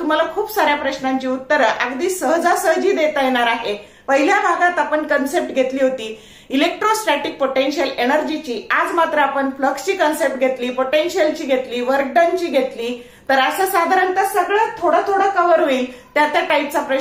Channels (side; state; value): both; identical; correlation 1.00